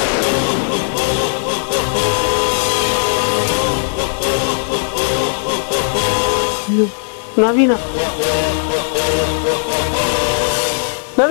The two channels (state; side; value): silent; right; digital silence